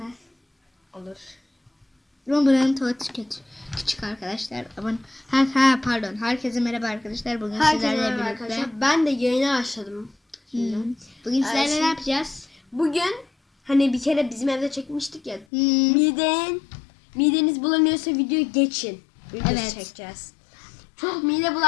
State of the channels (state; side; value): drops out; right; at 15.5 s